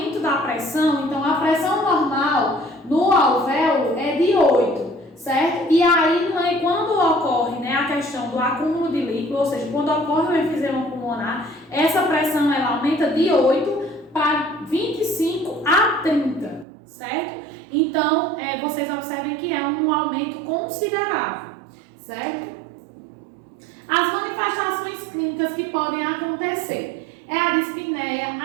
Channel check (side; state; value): left; drops out; at 16.7 s